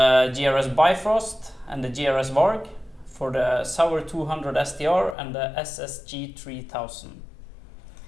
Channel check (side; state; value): right; drops out; at 5.2 s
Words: GRS Bifrost and the GRS Varg for the SAUER 200 STR and the SSG 3000.